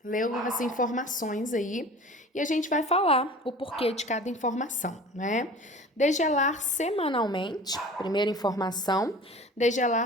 leu as informações aí e a gente vai falar o porquê de cada informação, né? Degelar semanalmente, primeira informação,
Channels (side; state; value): both; normal; correlation 0.41